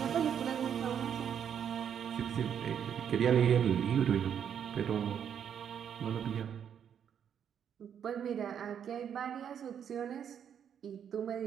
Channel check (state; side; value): quieter; left; 8.5 dB